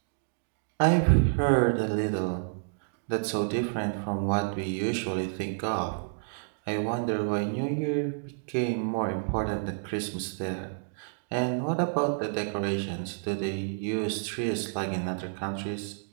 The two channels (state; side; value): silent; left; digital silence